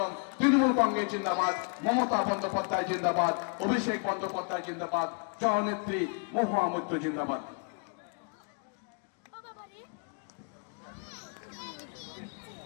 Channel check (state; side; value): quieter; right; 39.2 dB